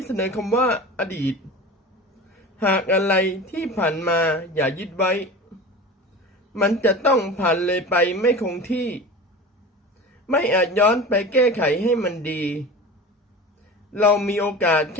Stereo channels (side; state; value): both; normal; correlation 0.33